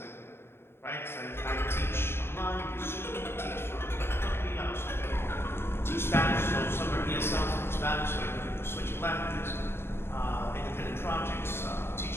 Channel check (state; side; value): late; right; 0.11 ms